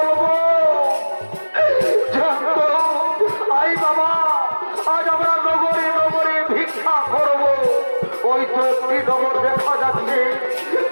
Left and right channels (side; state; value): both; inverted; correlation -1.00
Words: আই বাবা আজ আমরা নগরে নগরে ভিক্ষা করব ওই তো একটি নগর দেখা যাচ্ছে